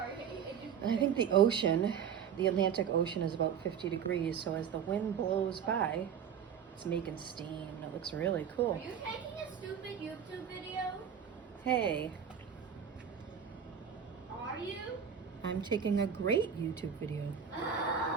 I think the ocean, the Atlantic Ocean, is about 50 degrees, so as the wind blows by, it's making steam, and it looks really Are cool. you taking a stupid YouTube video? Hey, Are you? I'm taking a great YouTube video.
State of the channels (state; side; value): quieter; left; 7.9 dB